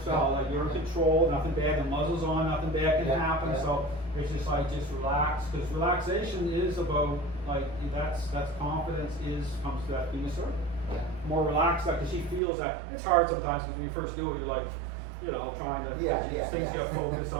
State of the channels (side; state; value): left; drops out; at 12.4 s